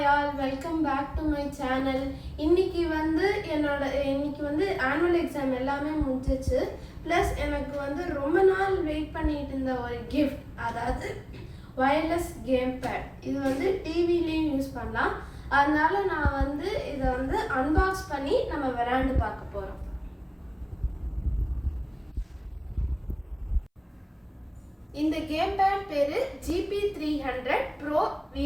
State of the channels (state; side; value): identical; both; correlation 1.00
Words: all, welcome back to my channel. இன்னைக்கு வந்து annual exam எல்லாமே முடிஞ்சிச்சு. Plus எனக்கு வந்து ரொம்ப நாள் வெயிட் பண்ணிட்டு இருந்த ஒரு gift, அதாவது wireless gamepad. இது வந்து டிவிலயும் யூஸ் பண்ணலாம். அதனால நான் வந்து இதை வந்து அன்பாக்ஸ் பண்ணி நம்ம விளையாண்டு பார்க்க போறோம். இந்த கேம்பேட் பேரு GP300 Pro